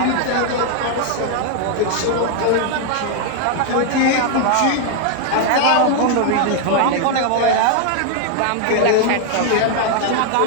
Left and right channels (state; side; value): different; both; correlation 0.00